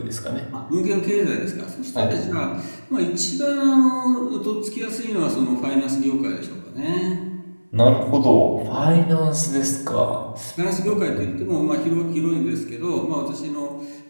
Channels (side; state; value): both; inverted; correlation -1.00